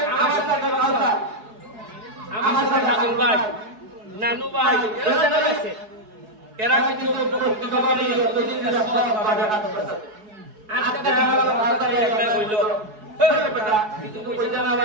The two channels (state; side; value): late; left; 4.7 ms